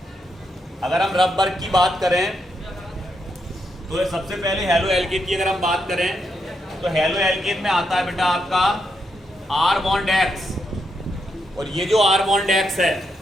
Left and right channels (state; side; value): normal; both; correlation 0.81